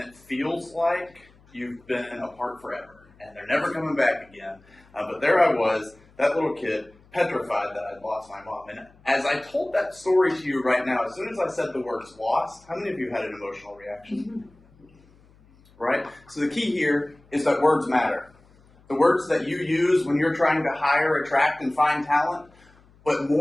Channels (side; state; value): left; noise; hum, 29 dB below the sound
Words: it feels like you've been apart forever, and they're never coming back again. But there I was, that little kid, petrified that I'd lost my mom. And as I told that story to you right now, as soon as I said the words lost, how many of you had an emotional reaction? Right? So the key here is that words matter. The words that you use when you're trying to hire, attract, and find talent, but